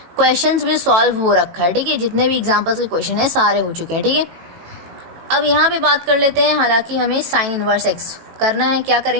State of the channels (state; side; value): late; left; 18 ms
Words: क्वेश्चंस भी सॉल्व हो रखा है, ठीक है, जितने भी एग्जांपल्स के क्वेश्चन है सारे हो चुके हैं, ठीक है। अब यहाँ पे बात कर लेते हैं, हालांकि हमें साइन इनवर्स एक्स करना है, क्या